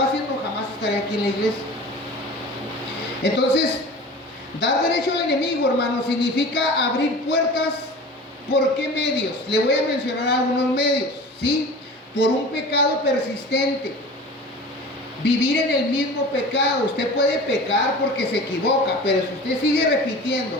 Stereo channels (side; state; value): both; normal; correlation 0.38